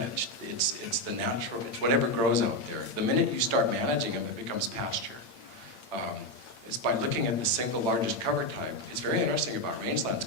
It's the natural, whatever grows out there. The minute you start managing them, it becomes pasture. It's by looking at the single largest cover type. It's very interesting about rangelands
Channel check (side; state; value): right; late; 8.7 ms